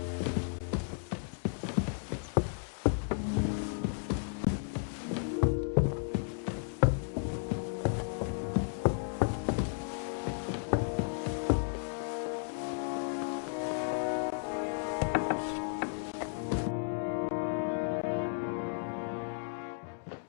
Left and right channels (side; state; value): right; silent; digital silence